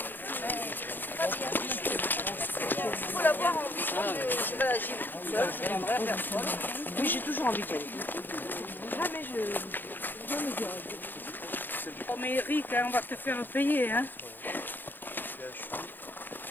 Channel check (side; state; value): right; late; 0.091 ms